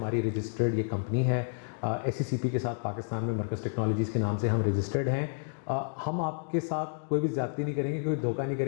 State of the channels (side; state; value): right; silent; digital silence